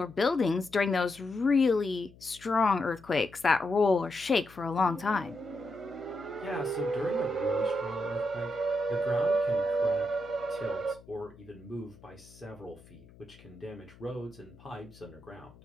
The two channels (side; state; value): left; noise; hum, 23 dB below the sound